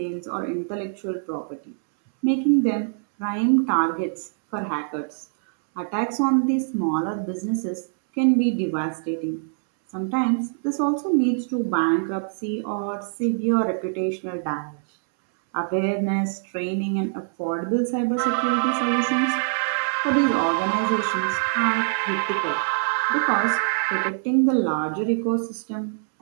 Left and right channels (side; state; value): left; silent; 63 dB below the other